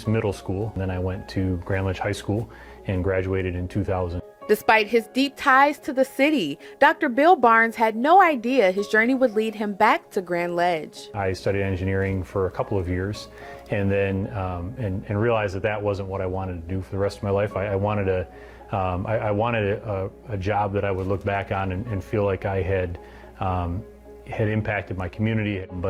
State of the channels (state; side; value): identical; both; correlation 1.00